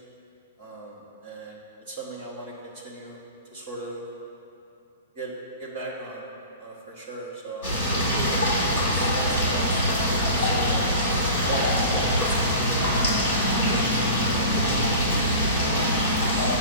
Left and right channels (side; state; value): both; inverted; correlation -0.37